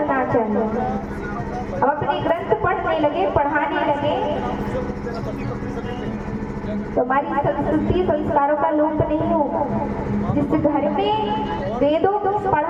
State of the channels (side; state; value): both; identical; correlation 1.00